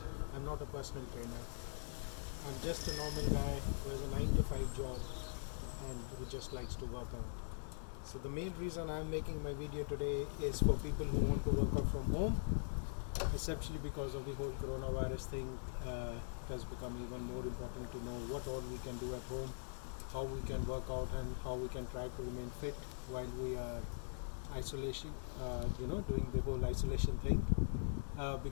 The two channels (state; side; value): silent; right; digital silence